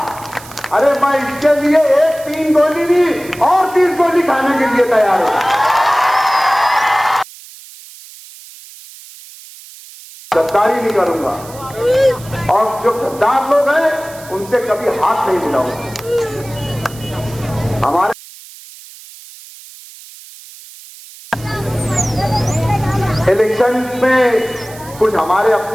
अरे मैं इसके लिए एक 3 गोली नहीं और 30 गोली खाने के लिए तैयार हूं। गद्दारी नहीं करूंगा, और जो गद्दार लोग हैं उनसे कभी हाथ नहीं मिलाऊंगा। हमारे इलेक्शन में कुछ हमारे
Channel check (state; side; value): noise; right; hiss, 19 dB below the sound